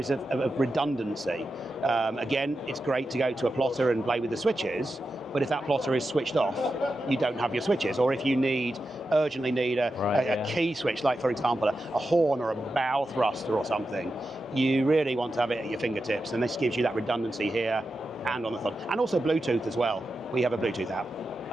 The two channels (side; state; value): both; normal; correlation 0.90